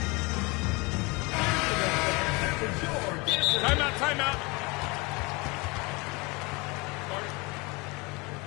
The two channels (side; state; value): right; quieter; 26.6 dB